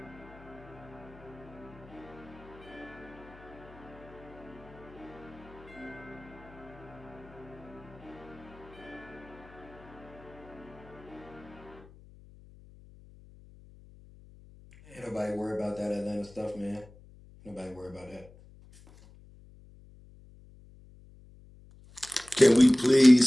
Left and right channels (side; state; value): left; noise; hum, 21 dB below the sound